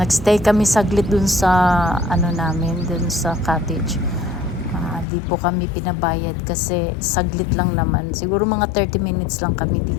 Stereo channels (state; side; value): drops out; right; at 5.1 s